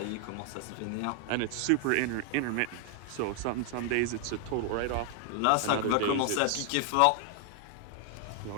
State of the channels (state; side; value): different; both; correlation 0.00